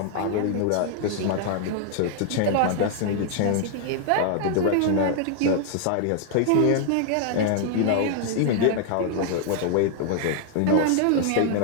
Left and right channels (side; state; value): both; different; correlation -0.01